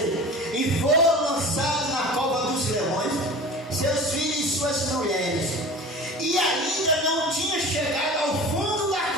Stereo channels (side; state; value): both; normal; correlation 0.37